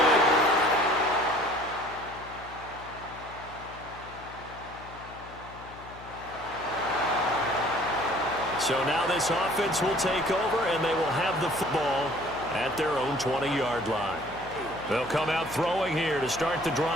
So now this offense will take over, and they will have the football at their own 20-yard line. They'll come out throwing here to start the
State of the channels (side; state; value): left; noise; hum, 18 dB below the sound